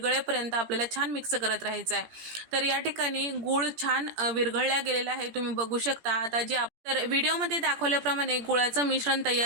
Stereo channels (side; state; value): left; late; 17 ms